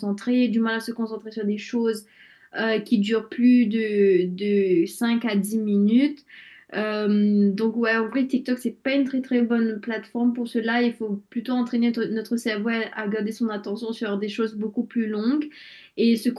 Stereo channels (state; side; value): identical; both; correlation 1.00